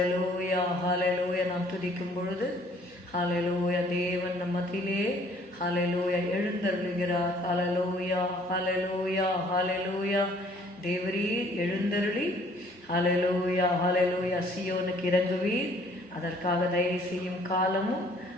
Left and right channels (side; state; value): both; normal; correlation 0.59